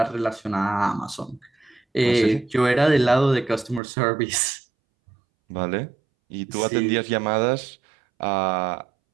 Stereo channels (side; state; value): left; drops out; at 3.8 s